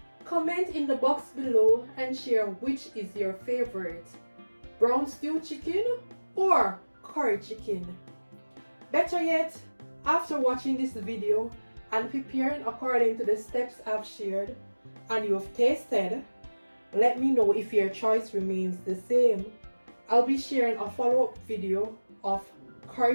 Comment in the box below and share which is your favorite, brown stew chicken or curry chicken. Better yet, after watching this video and preparing according to the steps I've shared and you've tasted, let me know if your choice remains the same. I'll be sharing a follow-up video of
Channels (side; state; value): both; inverted; correlation -1.00